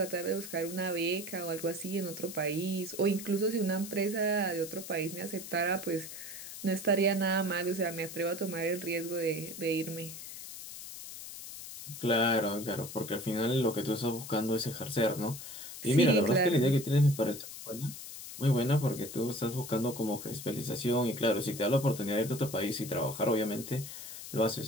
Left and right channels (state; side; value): noise; left; hiss, 11 dB below the sound